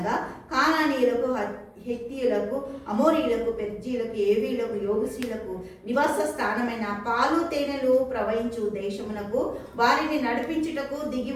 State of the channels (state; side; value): identical; both; correlation 1.00